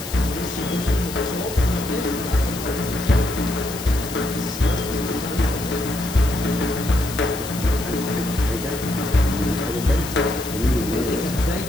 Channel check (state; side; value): noise; left; hiss, 11 dB below the sound